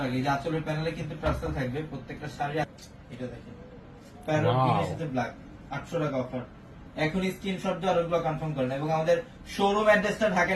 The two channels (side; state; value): both; identical; correlation 1.00